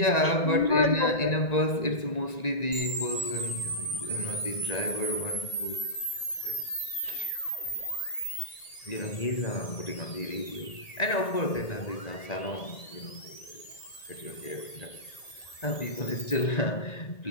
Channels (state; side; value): late; right; 1.8 ms